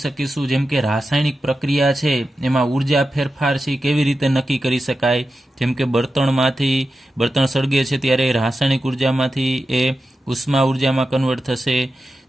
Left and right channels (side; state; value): both; normal; correlation 0.91